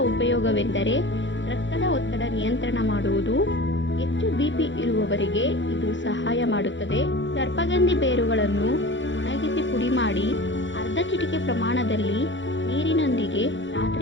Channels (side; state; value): right; late; 0.54 ms